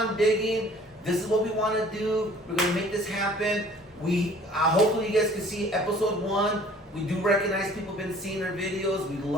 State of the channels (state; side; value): normal; both; correlation 0.52